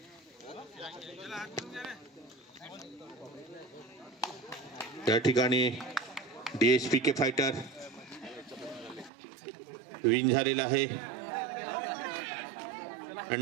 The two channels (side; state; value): left; drops out; at 9.1 s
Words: या ठिकाणी DSPK फायटर विन झालेला आहे.